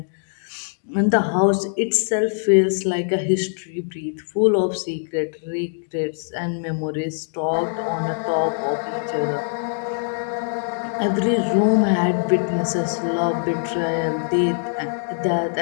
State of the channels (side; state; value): right; silent; digital silence